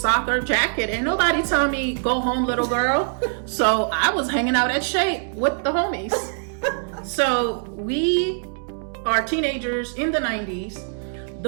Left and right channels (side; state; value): left; silent; digital silence